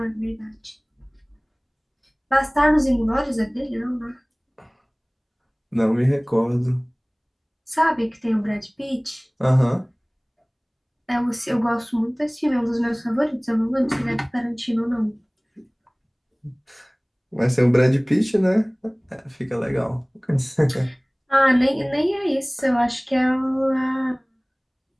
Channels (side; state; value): both; identical; correlation 1.00